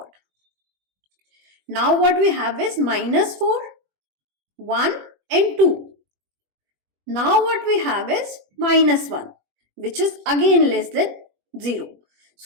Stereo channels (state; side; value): late; left; 21 ms